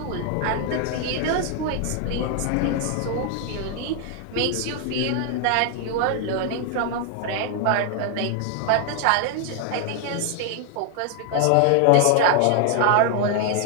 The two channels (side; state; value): both; different; correlation 0.00